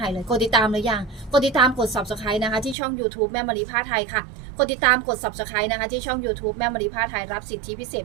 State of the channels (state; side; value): drops out; left; at 2.8 s